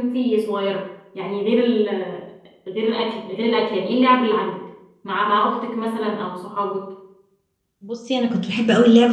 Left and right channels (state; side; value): identical; both; correlation 1.00